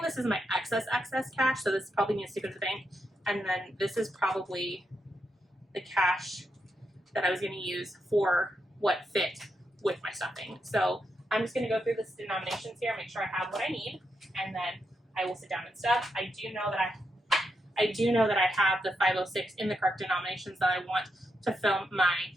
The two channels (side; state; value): both; normal; correlation 0.83